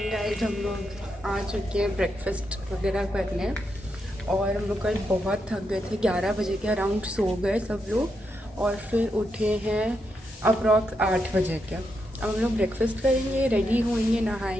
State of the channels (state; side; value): normal; both; correlation 0.83